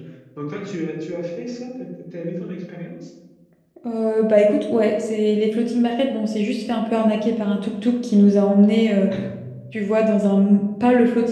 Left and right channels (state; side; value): identical; both; correlation 1.00